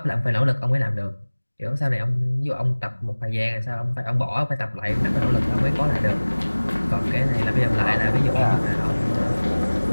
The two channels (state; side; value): inverted; both; correlation -1.00